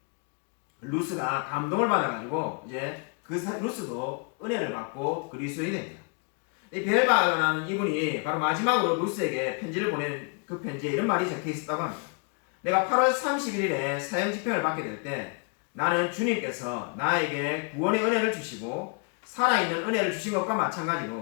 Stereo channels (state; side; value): quieter; right; 37.2 dB